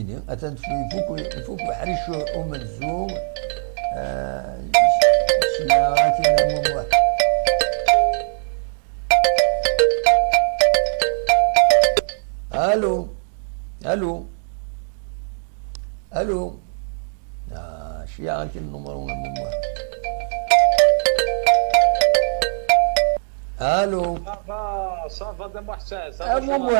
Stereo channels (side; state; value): left; silent; digital silence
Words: اتن فوق حريش ومنزوم سياراتي الو الو الو شيعة النمر من واحد الو صافا دم حساس